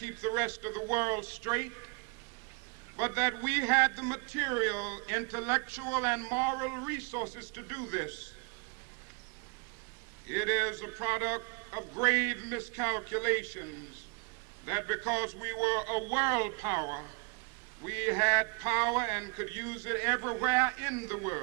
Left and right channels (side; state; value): left; quieter; 33.1 dB